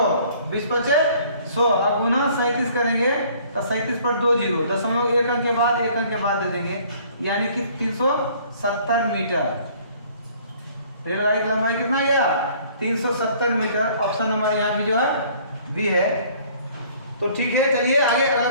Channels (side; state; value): both; inverted; correlation -0.56